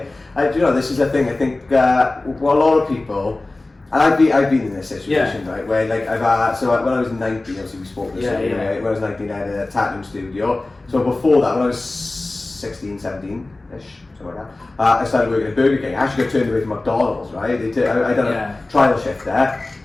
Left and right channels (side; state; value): right; quieter; 3.0 dB